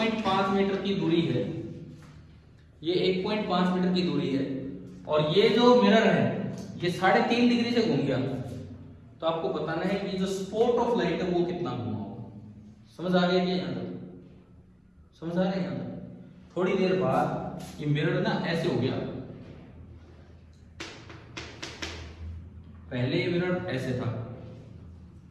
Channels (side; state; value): both; identical; correlation 1.00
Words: मीटर की दूरी है, ये 1.5 मीटर की दूरी है, और ये जो मिरर है ये 3.5 डिग्री से घूम गया। तो आपको बताना है कि जो स्पॉट ऑफ लाइट है वो कितना घूमा होगा। समझ आ गया कि यहाँ तक? समझ आ रहा है यहाँ तक? थोड़ी देर बाद ये मिरर ना ऐसे हो गया, पहले ये मिरर ऐसे था।